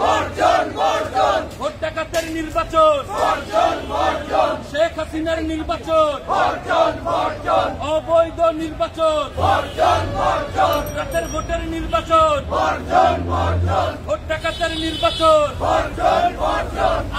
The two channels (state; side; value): identical; both; correlation 1.00